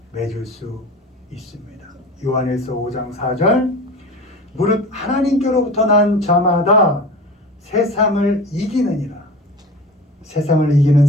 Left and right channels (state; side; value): normal; both; correlation 0.35